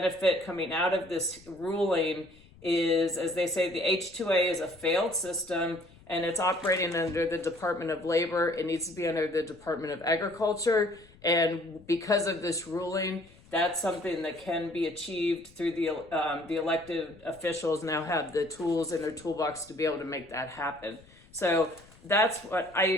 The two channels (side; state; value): left; noise; rumble, 25 dB below the sound